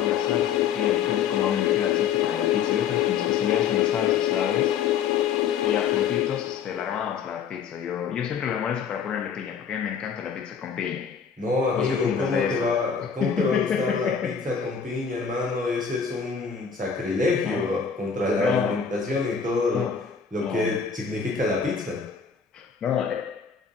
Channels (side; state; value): right; quieter; 6.8 dB